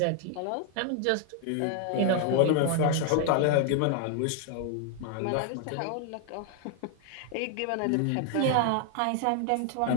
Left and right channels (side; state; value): both; different; correlation 0.00